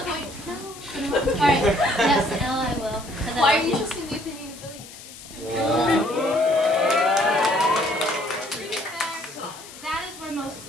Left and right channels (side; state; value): left; noise; hiss, 17 dB below the sound